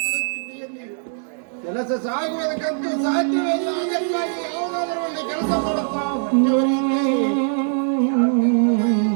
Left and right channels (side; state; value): left; silent; digital silence